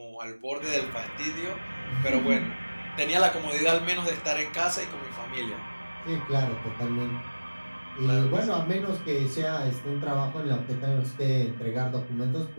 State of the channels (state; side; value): inverted; both; correlation -1.00